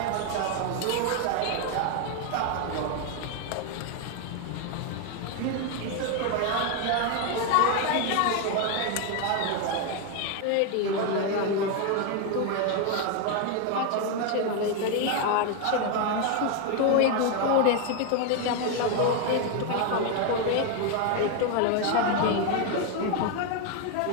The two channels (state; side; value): different; both; correlation 0.01